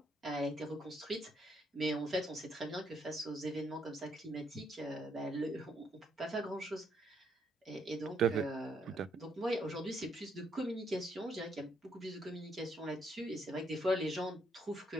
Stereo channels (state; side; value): normal; both; correlation 0.73